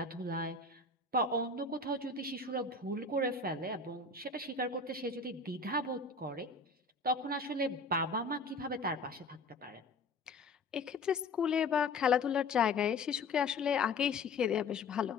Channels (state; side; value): quieter; right; 3.6 dB